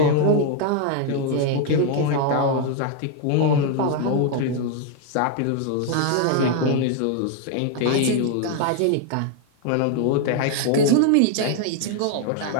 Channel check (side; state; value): both; different; correlation 0.00